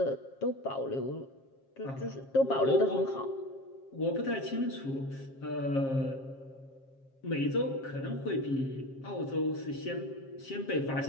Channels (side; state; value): right; late; 7.5 ms